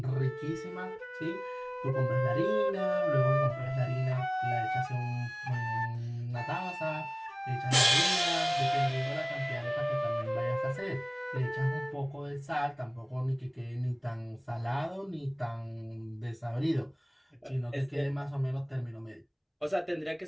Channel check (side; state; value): both; identical; correlation 1.00